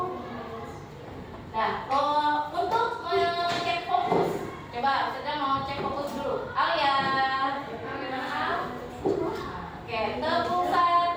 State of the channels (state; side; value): identical; both; correlation 1.00